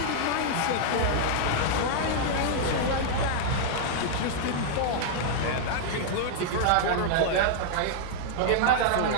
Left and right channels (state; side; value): different; both; correlation 0.00